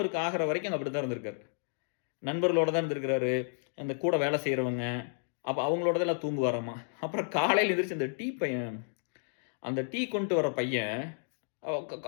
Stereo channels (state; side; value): silent; right; digital silence